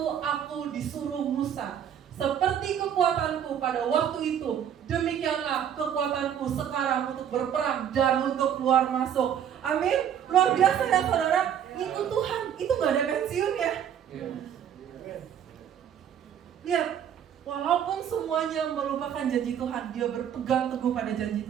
aku disuruh Musa. Seperti kekuatanku pada waktu itu, demikianlah kekuatanku sekarang untuk berperang dan untuk keluar masuk. Amin. Luar biasa ya saudara. Itu Tuhan, itu gak ada pensiun ya. Lihat, walaupun semuanya melupakan janji Tuhan, dia berpegang teguh pada janji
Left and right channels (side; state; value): left; quieter; 9.2 dB